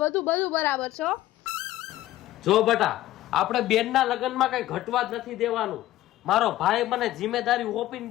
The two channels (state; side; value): quieter; right; 15.0 dB